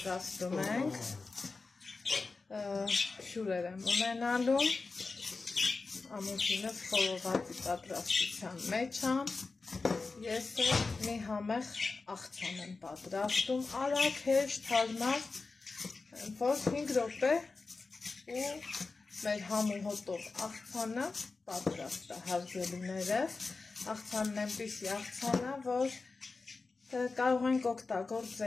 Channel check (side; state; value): right; quieter; 4.0 dB